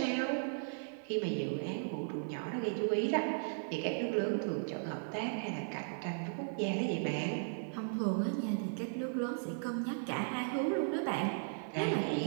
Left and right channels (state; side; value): silent; left; 53 dB below the other